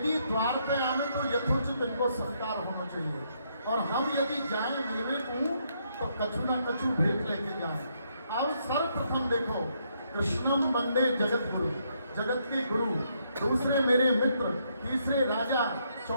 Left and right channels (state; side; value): inverted; both; correlation -0.74